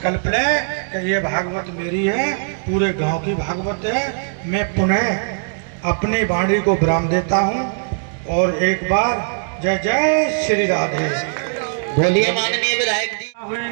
लें कि ये भागवत मेरी है, पूरे गांव की भागवत है। मैं पुनः अपनी वाणी को विराम देता हूँ और एक बार जय जय श्री राधे बोलिए माननीय विधायक जी।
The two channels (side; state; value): left; silent; digital silence